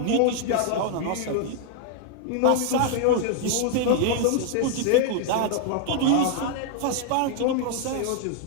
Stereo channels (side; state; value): both; different; correlation 0.00